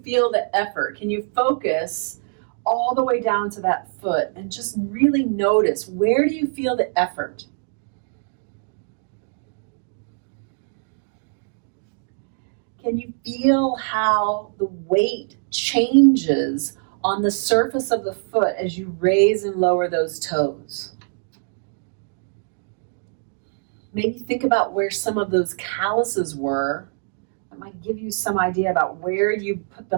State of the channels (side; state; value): left; silent; 63 dB below the other